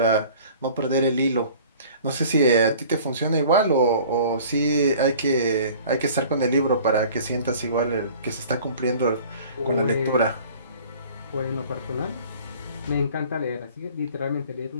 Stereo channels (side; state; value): both; inverted; correlation -0.47